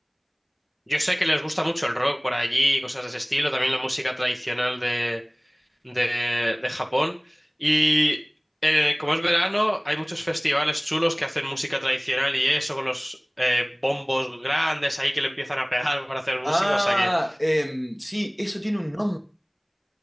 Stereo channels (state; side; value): identical; both; correlation 1.00